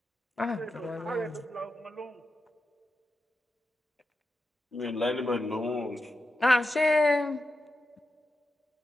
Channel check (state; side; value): normal; both; correlation 0.89